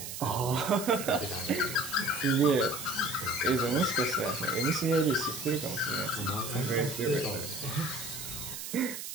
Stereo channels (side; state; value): right; noise; hiss, 8 dB below the sound